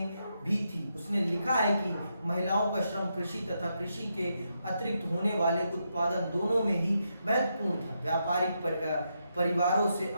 भी थी। उसने लिखा है कि महिलाओं का श्रम कृषि तथा कृषि के अतिरिक्त होने वाले उत्पादन दोनों में ही महत्वपूर्ण था। व्यापारिक परिवारों से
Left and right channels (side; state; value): both; inverted; correlation -0.82